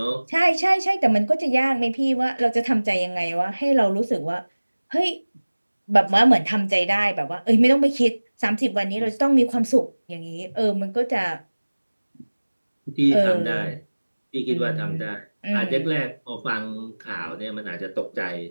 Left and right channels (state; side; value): inverted; both; correlation -1.00